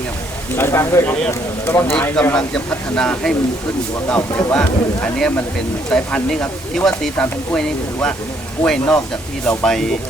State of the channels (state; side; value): normal; both; correlation 0.68